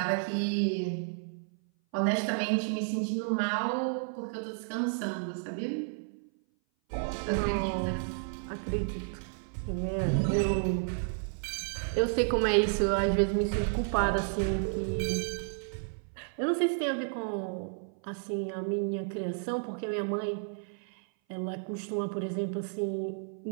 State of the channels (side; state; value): left; silent; 57 dB below the other